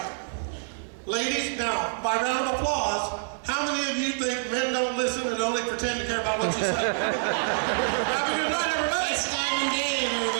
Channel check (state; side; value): silent; left; digital silence